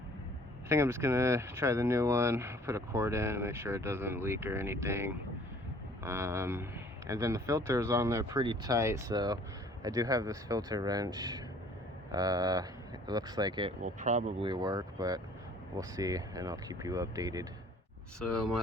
I think I'm just gonna try the new one, put a cord in and make sure it doesn't leak or anything. And then the filter is on there pretty tight, so I do have this filter wrench. It looks like it will probably work, but we'll see, and I'll keep you updated. So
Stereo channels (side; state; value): both; normal; correlation 0.54